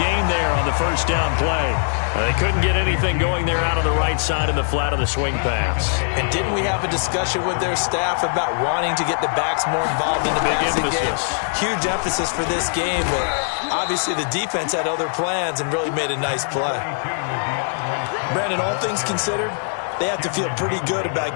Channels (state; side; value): silent; right; 65 dB below the other